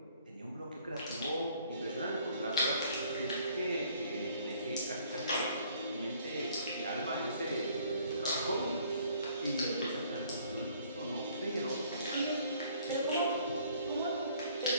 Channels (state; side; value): inverted; both; correlation -0.60